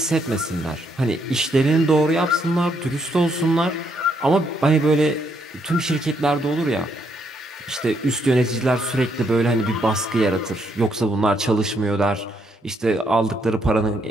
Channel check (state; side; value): normal; both; correlation 0.74